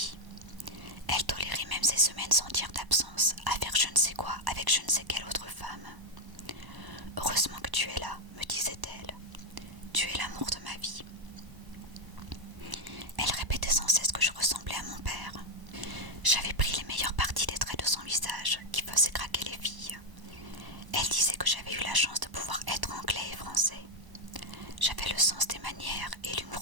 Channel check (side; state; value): left; late; 1.0 ms